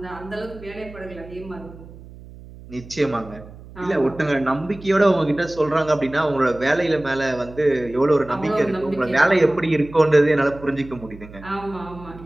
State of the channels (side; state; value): right; noise; hum, 18 dB below the sound